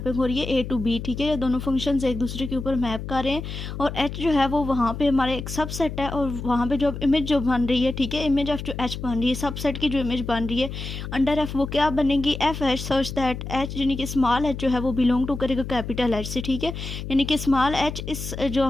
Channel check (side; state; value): left; noise; hum, 7 dB below the sound